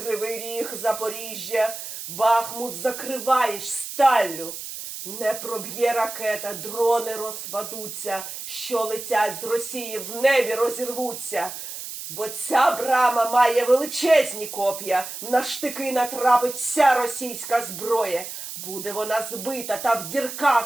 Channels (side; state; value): right; noise; hiss, 9 dB below the sound